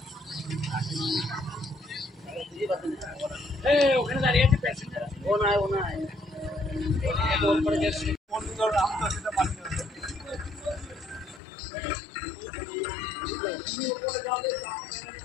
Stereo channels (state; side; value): drops out; right; at 11.4 s